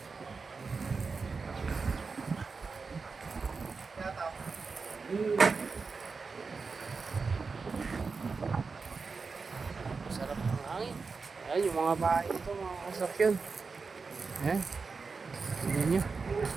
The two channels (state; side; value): quieter; left; 4.6 dB